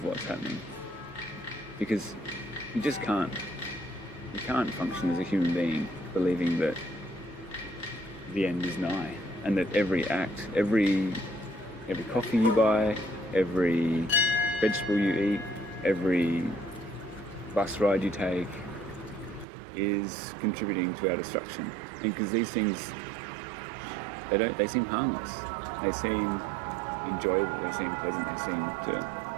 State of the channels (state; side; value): drops out; left; at 19.5 s